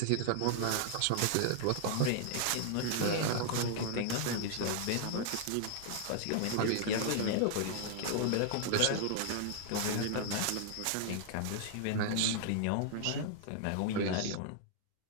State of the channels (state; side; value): different; both; correlation 0.00